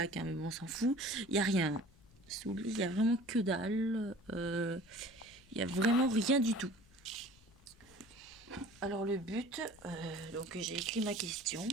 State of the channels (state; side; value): noise; left; rumble, 26 dB below the sound